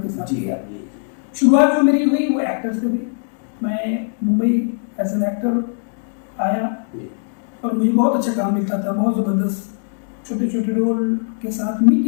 के साथ किया। शुरुआत जो मेरी हुई वो एक्टर से हुई। मैं मुंबई एज एन एक्टर आया और मुझे बहुत अच्छा काम मिलता था, बहुत ज़बरदस्त छोटे छोटे रोल के साथ,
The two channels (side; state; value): right; silent; digital silence